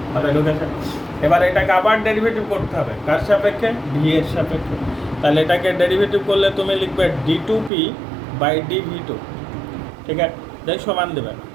মাথায় ঢুকেছে? এবার এটাকে আবার ডেরিভেটিভ করতে হবে, কার সাপেক্ষে ভি এর সাপেক্ষে, তাহলে এটাকে ডেরিভেটিভ করলে তুমি লিখবে d2p বাই dv2, ঠিক আছে? দেখ সমান দেবে,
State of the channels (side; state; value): left; drops out; at 7.7 s